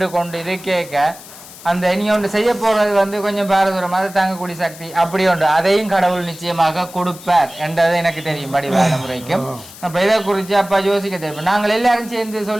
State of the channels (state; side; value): noise; left; hiss, 17 dB below the sound